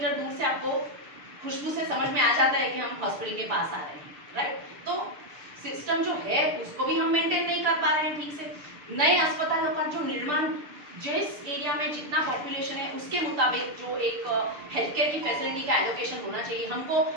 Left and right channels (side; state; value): left; late; 6.7 ms